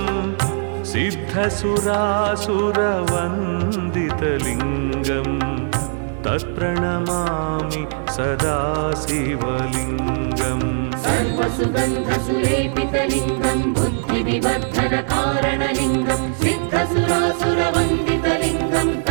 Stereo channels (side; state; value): left; silent; 61 dB below the other